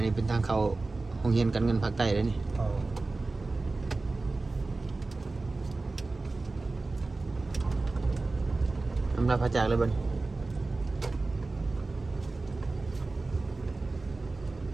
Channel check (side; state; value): left; quieter; 3.4 dB